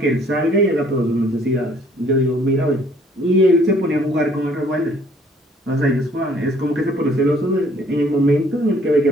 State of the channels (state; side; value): normal; both; correlation 0.60